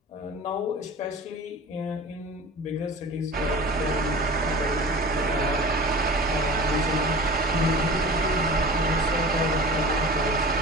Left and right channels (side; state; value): both; normal; correlation 0.37